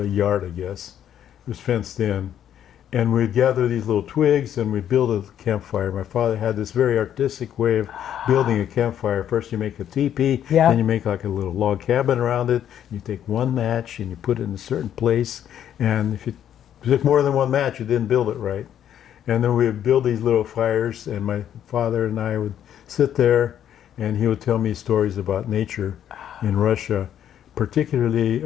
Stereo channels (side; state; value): right; quieter; 10.1 dB